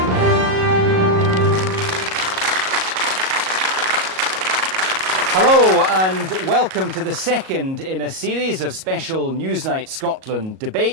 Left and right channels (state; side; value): late; left; 37 ms